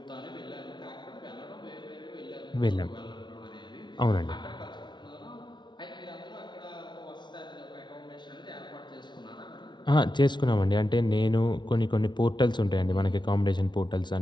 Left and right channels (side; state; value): right; late; 0.22 ms